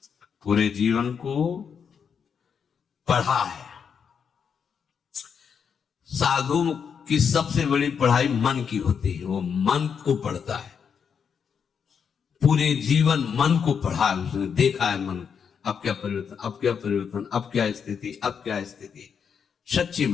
पूरे जीवन को पढ़ा है। साधु की सबसे बड़ी पढ़ाई मन की होती है, वो मन को पढ़ता है। पूरे जीवन मन को पढ़ा है उसने, देखा है मन अब क्या परिवर्तन, अब क्या परिवर्तन, अब क्या स्थिति, अब क्या स्थिति। सच्ची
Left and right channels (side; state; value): right; quieter; 6.9 dB